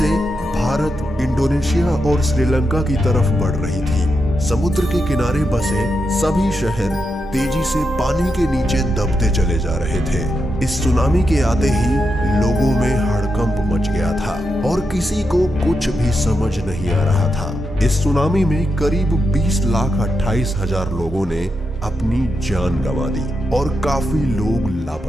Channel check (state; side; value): normal; both; correlation 0.86